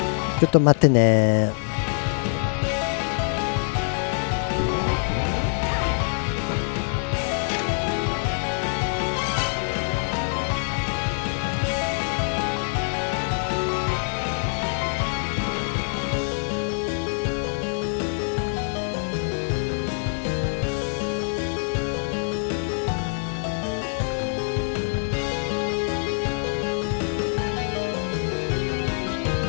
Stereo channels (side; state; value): right; silent; digital silence